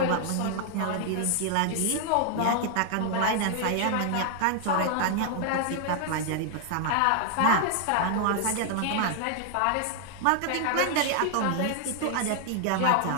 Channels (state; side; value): different; both; correlation 0.00